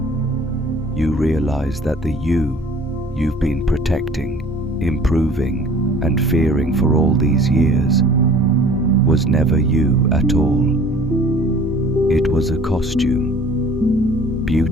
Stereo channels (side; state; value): both; normal; correlation 0.49